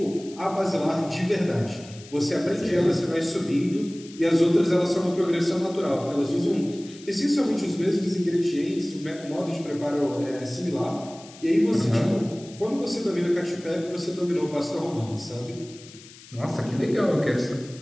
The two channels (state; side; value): noise; left; hiss, 20 dB below the sound